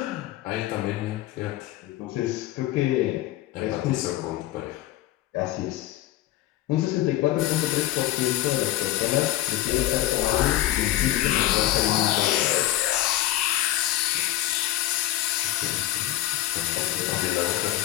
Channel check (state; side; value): quieter; right; 14.5 dB